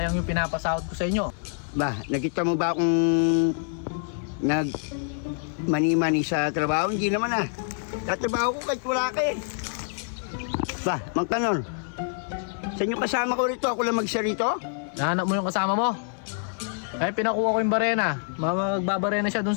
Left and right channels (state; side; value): silent; right; digital silence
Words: yung pinapasahod ko sa inyo. Ba, nakita mo ba akong mani-mani sa trabaho? Hindi naman ah. Tatrabaho ko kahit wala ka eh. Ba, Mang Kanor, saan yung kasama ko rito? Ako lang mag-isa rito? Nahanap mo yung kasama mo? Ay, pinakuha ko yung barena. Magbabarena siya dun